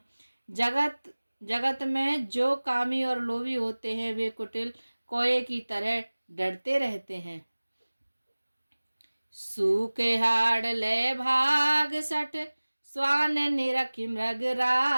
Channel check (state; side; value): inverted; both; correlation -1.00